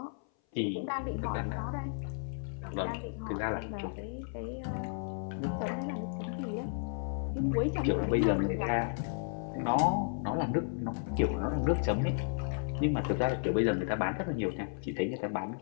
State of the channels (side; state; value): right; silent; 56 dB below the other